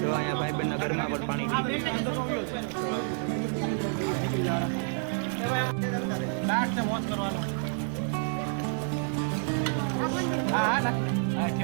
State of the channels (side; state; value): left; silent; 59 dB below the other